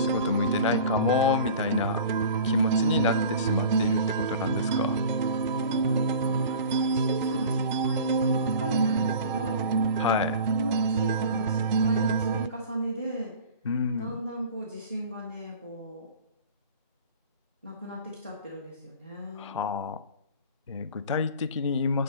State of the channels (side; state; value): both; inverted; correlation -0.40